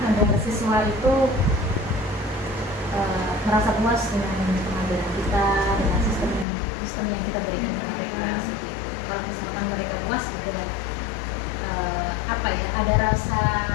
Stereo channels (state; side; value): drops out; right; at 6.5 s